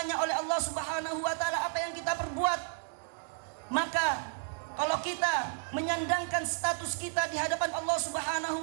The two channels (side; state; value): left; silent; 56 dB below the other